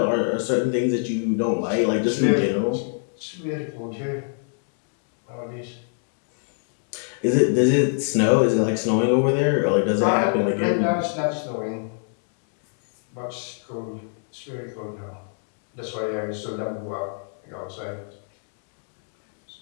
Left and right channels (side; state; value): right; silent; digital silence